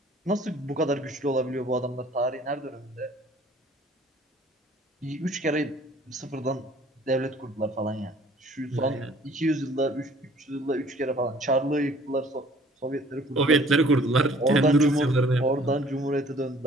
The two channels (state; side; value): normal; both; correlation 0.55